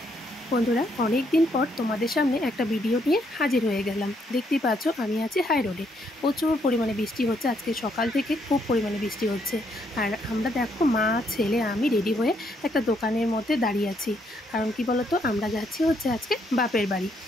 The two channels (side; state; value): both; normal; correlation 0.73